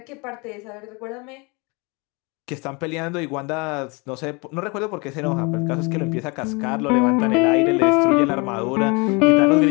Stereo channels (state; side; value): quieter; right; 28.8 dB